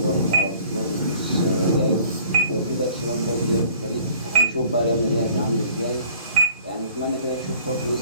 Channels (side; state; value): both; inverted; correlation -0.54